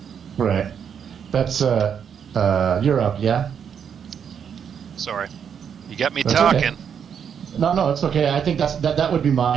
Right. That's you're up, yeah. Sorry, you got me talking. Okay. No, it's okay. I think that would be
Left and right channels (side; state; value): left; quieter; 7.7 dB